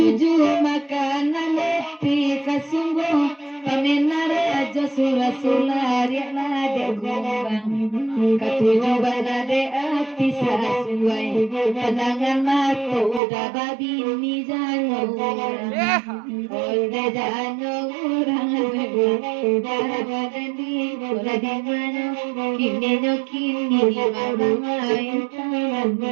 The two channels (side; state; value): left; drops out; at 13.2 s